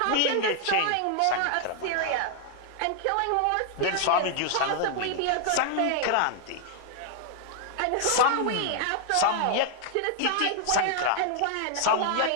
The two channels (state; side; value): different; both; correlation 0.00